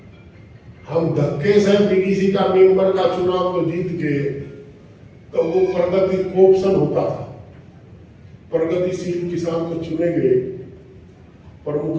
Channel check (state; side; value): identical; both; correlation 1.00